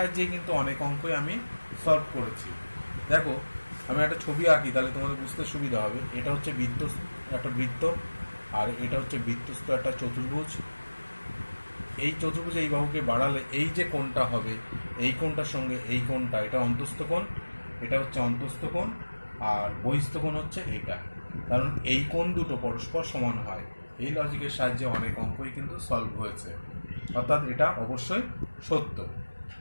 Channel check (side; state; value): both; inverted; correlation -1.00